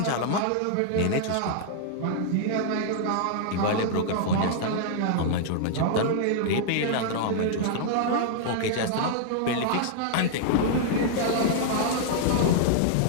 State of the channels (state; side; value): different; both; correlation -0.01